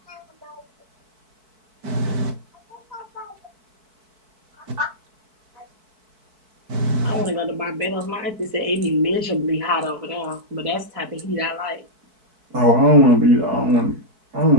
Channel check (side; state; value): left; late; 4.6 ms